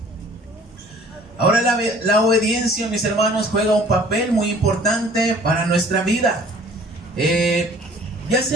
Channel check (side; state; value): both; normal; correlation 0.52